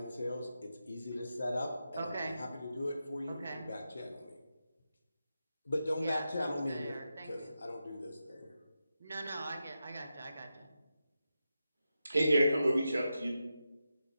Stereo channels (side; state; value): both; inverted; correlation -0.89